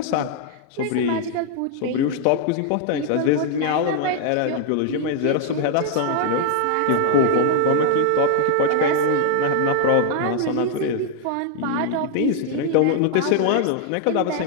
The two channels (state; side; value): different; both; correlation 0.00